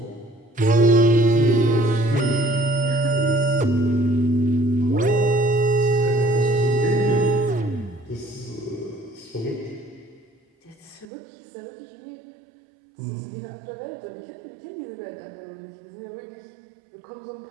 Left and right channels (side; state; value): left; drops out; at 11.1 s